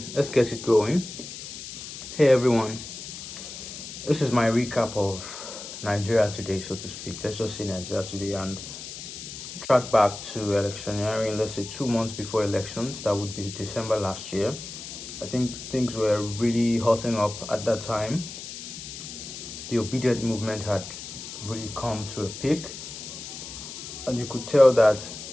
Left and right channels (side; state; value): left; noise; hiss, 10 dB below the sound